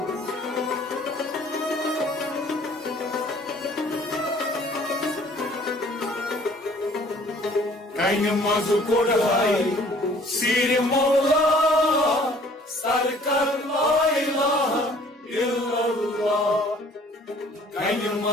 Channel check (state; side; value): normal; both; correlation 0.55